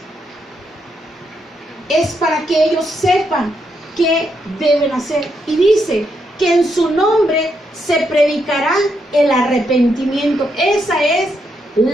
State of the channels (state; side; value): normal; both; correlation 0.79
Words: es para que ellos sepan qué deben hacer. Y dice que en su nombre se predicará el arrepentimiento. Esa es